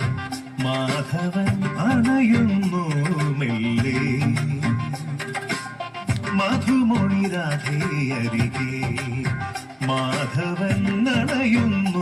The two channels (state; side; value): identical; both; correlation 1.00